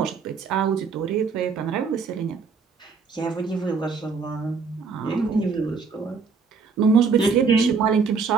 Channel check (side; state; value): left; quieter; 5.2 dB